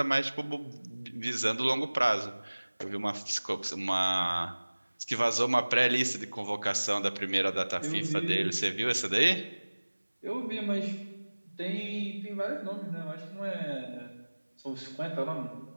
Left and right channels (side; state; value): both; inverted; correlation -1.00